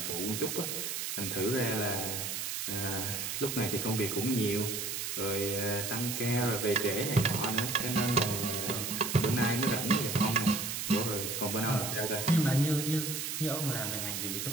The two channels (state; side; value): noise; right; hiss, 3 dB below the sound